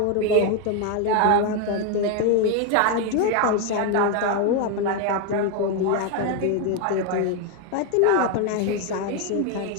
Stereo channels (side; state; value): both; different; correlation 0.02